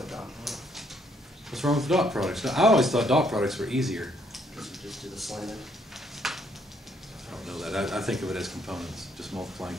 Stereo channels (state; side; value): normal; both; correlation 0.70